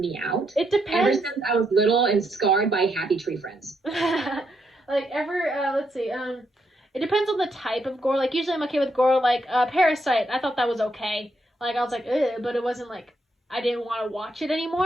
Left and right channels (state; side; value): normal; both; correlation 0.78